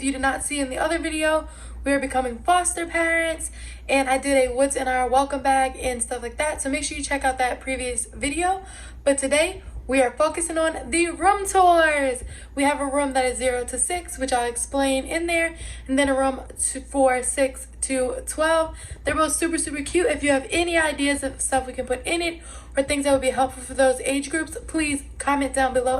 you did not see in the other video, we are becoming foster parents, and I did a what's in our welcome bag and stuff like that, so make sure you check out that previous video. But today we are focusing on the room tours. We have a room that is 0 to 6, which I'll explain in there, and then a room for 6 to 12. They're both super cute. If you have any ideas of stuff we can put in it or things that would be helpful for those age groups, please comment down below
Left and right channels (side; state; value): both; identical; correlation 1.00